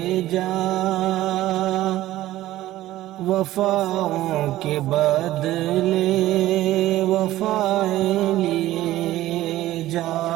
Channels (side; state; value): left; quieter; 15.2 dB